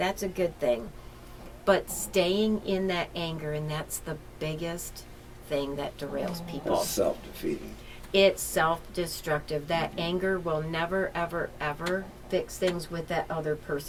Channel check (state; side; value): identical; both; correlation 1.00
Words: a good thing. But staying in that anger, and that's the biggest thing that derails people. It's self-defeating. It's self-destructive. That anger will never, ever, ever fix things with that other